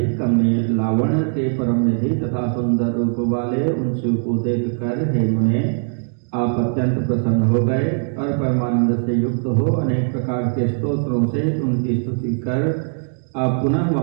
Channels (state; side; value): silent; left; digital silence